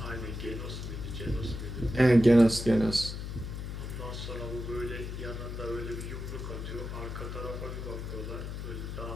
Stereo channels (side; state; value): left; noise; hum, 6 dB below the sound